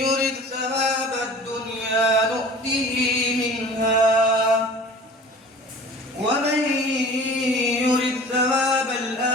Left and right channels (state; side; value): normal; both; correlation 0.43